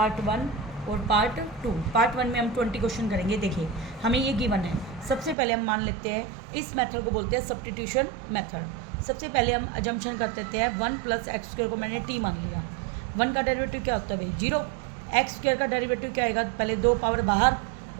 1 और पार्ट 2। पार्ट 1 में हम 20 क्वेश्चन करेंगे। देखिए हमें ये गिवन है। सबसे पहले हम मान लेते हैं इस मेथड को बोलते हैं सब्स्टिट्यूशन मेथड। सबसे पहले हम अजम्पशन कर देते हैं 1 + x² को मैंने t मान लिया। 1 का डेरिवेटिव क्या होता है भाई 0। x² का डेरिवेटिव क्या आएगा, पहले 2 पावर बाहर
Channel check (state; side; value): drops out; left; at 5.4 s